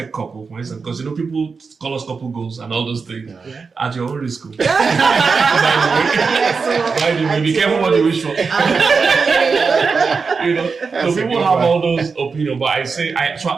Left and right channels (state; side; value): quieter; left; 4.9 dB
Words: couple, for instance, because people call us couple goals and all those things at your own risk. By the way, be careful what you wish for. So people have all those opinions, but I say,